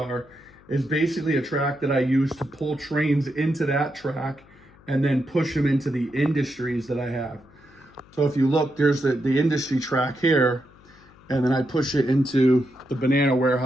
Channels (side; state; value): left; noise; hum, 26 dB below the sound